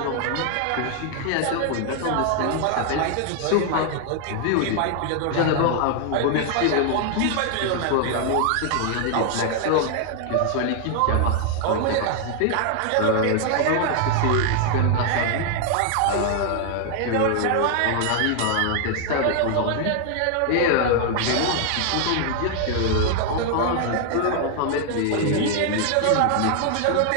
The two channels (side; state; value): both; different; correlation 0.00